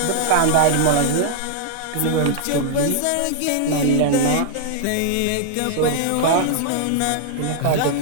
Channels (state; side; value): different; both; correlation -0.01